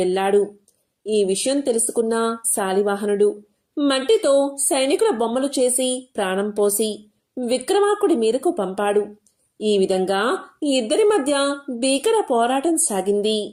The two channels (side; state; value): both; identical; correlation 1.00